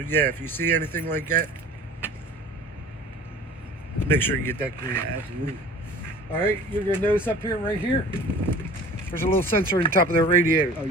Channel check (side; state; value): both; normal; correlation 0.44